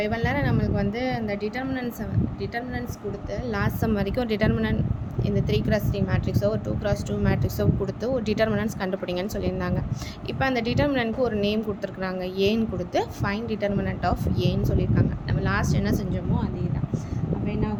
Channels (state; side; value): identical; both; correlation 1.00